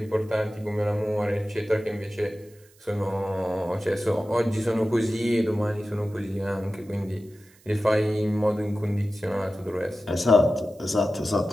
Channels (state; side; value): noise; right; hiss, 29 dB below the sound